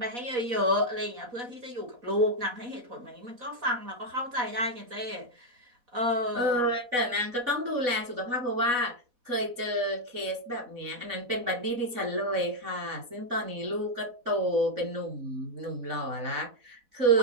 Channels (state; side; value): late; left; 4.1 ms